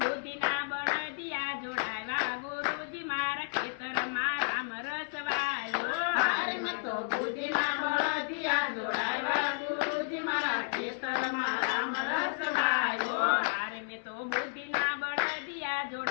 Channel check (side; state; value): right; silent; 56 dB below the other